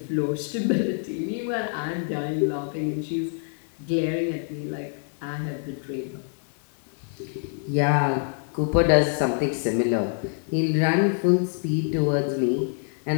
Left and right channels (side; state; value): right; silent; 61 dB below the other